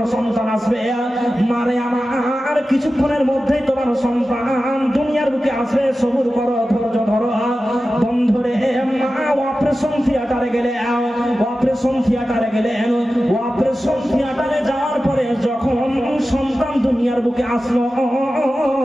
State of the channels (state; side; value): normal; both; correlation 0.94